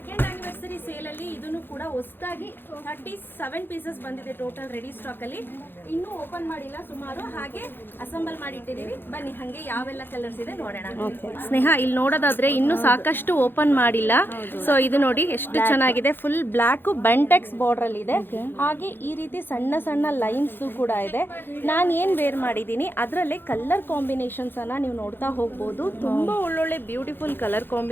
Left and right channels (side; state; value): right; late; 0.10 ms